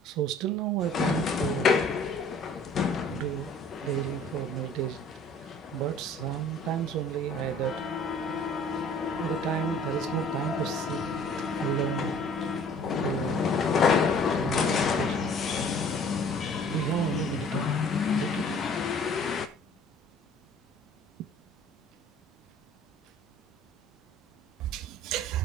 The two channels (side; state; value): both; normal; correlation 0.52